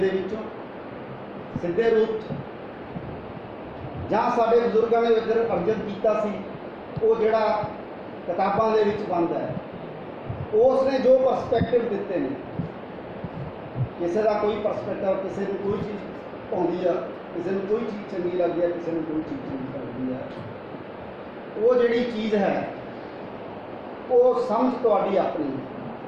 ਵਿੱਚੋਂ, ਸਿੱਧੇ ਰੂਪ 'ਚ ਜਾਂ ਸਾਡੇ ਬਜ਼ੁਰਗਾਂ ਨੇ ਅਰਜਨ ਕੀਤਾ ਸੀ, ਉਹ ਜਿਹੜਾ ਕਿਤਾਬਾਂ ਦੇ ਵਿੱਚ ਬੰਦ ਹੈ, ਉਸ ਨੇ ਜੋ ਪਰਸਪੈਕਟਿਵ ਦਿੱਤੇ ਨੇ, ਕਿਸੇ ਦਾ ਕੋਈ ਪਰਸਪੈਕਟਿਵ, ਕਿਸੇ ਨੂੰ ਕੋਈ ਚੀਜ਼ ਆਉਂਦੀ ਆ, ਕਿਸੇ ਨੂੰ ਕੋਈ ਚੀਜ਼ ਚੰਗੀ ਲੱਗਦੀ ਹੈ, ਕਿਸੇ ਨੂੰ ਕੋਈ ਚੀਜ਼ ਚੰਗੀ ਲੱਗਦੀ ਹੈ। ਉਹ ਜਿਹੜੀ ਚੀਜ਼ ਹੈ ਉਹ ਸਮਝ ਤੁਹਾਡੀ ਆਪਣੀ।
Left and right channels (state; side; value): identical; both; correlation 1.00